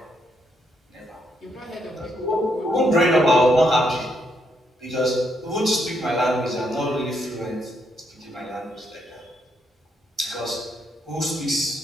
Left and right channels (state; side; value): normal; both; correlation 0.76